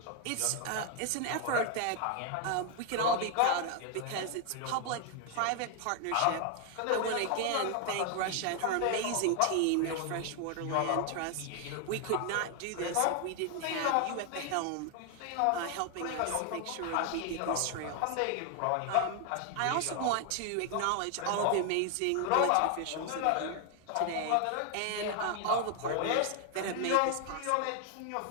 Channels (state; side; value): different; both; correlation 0.00